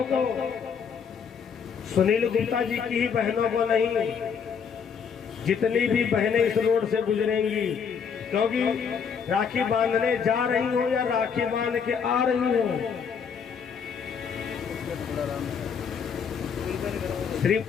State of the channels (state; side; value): quieter; right; 6.6 dB